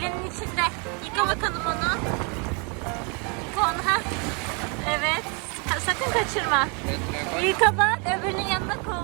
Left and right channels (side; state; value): left; quieter; 34.1 dB